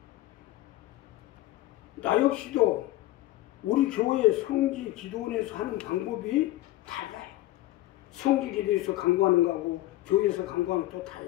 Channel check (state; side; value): quieter; right; 16.1 dB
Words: 나 역시도 우리 교회 성지 기도원에서 하는 방법이 달라요. 성지 기도에서 강구하는 거하고 교회에서 강구하는 거 또